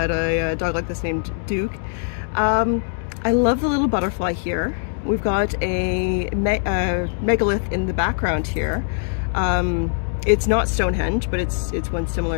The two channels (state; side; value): silent; right; digital silence